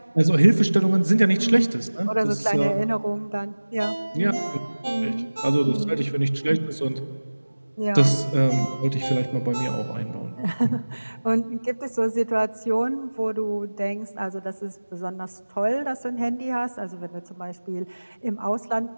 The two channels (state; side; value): inverted; both; correlation -1.00